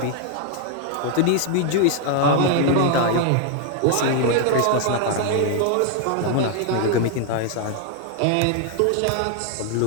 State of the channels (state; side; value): different; both; correlation 0.00